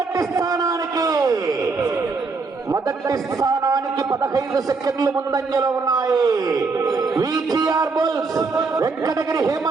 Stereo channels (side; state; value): left; quieter; 4.2 dB